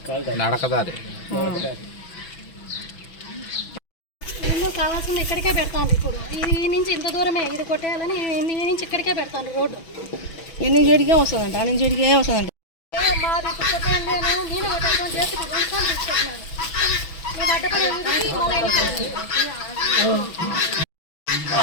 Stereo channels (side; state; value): right; late; 6.1 ms